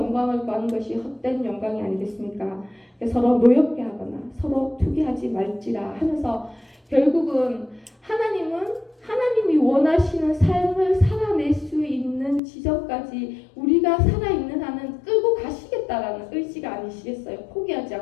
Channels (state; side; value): drops out; right; at 12.4 s